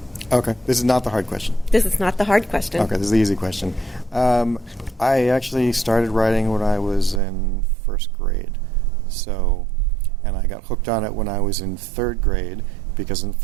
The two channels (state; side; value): drops out; left; at 7.2 s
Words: Okay, this is not the hard question. This is not the hard question. Okay, this is the easy question. I actually started writing when I was in first grade. And I got hooked on it when I was in third grade, because in